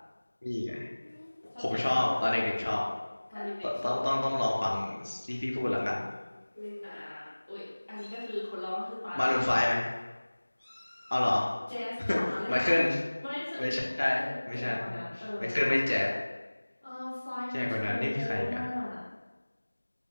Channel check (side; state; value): both; inverted; correlation -1.00